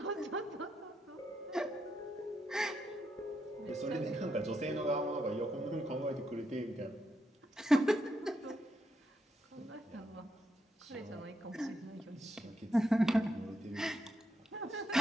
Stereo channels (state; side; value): normal; both; correlation 0.81